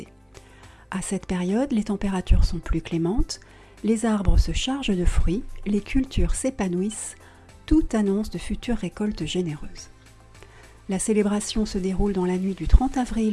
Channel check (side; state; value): both; identical; correlation 1.00